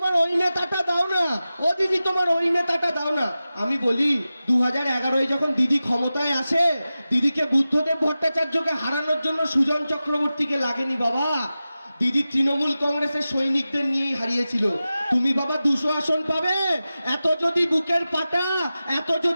ওই নেতাটা দাও না, ও দিদি তোমার ওই নেতাটা দাও না। আমি বলি 2011-এ যখন দিদি ক্ষমতায় আসে, দিদিকে বুদ্ধদেব ভট্টাচার্যকে হারানোর জন্য সুজন চক্রবর্তীকে লাগেনি বাবা, দিদি তৃণমূল কংগ্রেসের সৈনিকদের নিয়েই হারিয়েছিল। তুমি বাবা 200 আসন পাবে, এত যদি বুকের পাটা, এত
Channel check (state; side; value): inverted; both; correlation -0.94